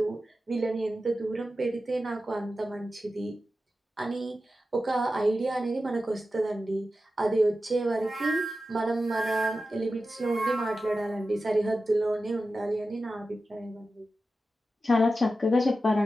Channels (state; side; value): normal; both; correlation 0.92